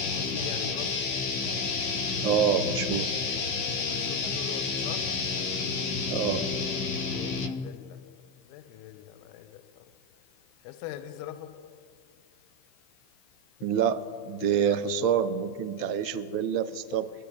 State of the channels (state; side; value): late; right; 16 ms